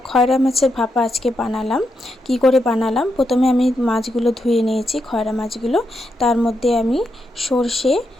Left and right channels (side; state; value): both; normal; correlation 0.83